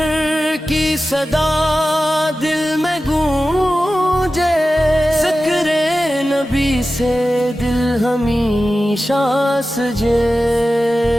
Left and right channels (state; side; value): normal; both; correlation 0.94